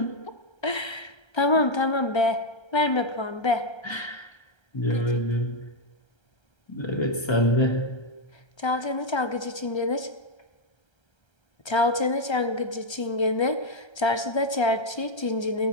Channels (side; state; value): right; late; 1.3 ms